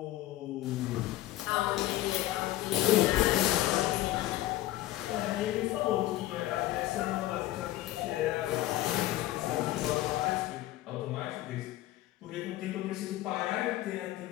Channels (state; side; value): quieter; right; 15.5 dB